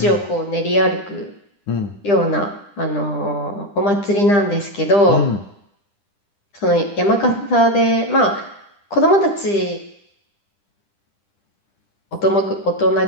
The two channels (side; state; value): right; late; 10 ms